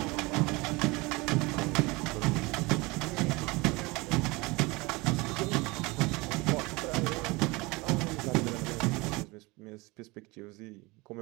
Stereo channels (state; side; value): quieter; left; 24.0 dB